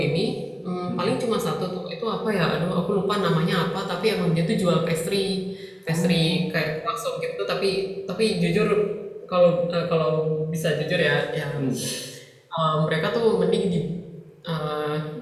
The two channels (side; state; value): both; identical; correlation 1.00